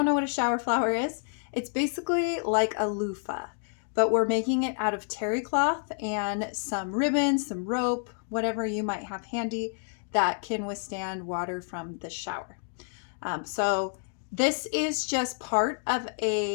know what a shower flower is, it's basically like a loofah, but we're making it out of terry cloth and some ribbon, some rope, whatever you might have handy that can withstand water from the shower. So this is just part of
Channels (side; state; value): right; silent; 59 dB below the other